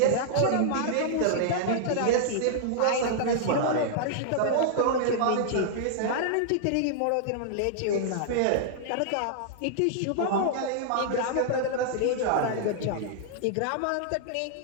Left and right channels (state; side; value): different; both; correlation -0.01